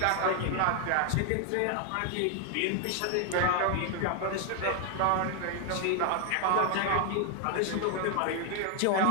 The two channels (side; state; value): both; different; correlation 0.00